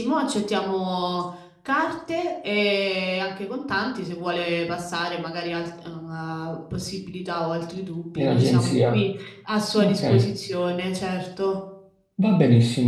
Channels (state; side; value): identical; both; correlation 1.00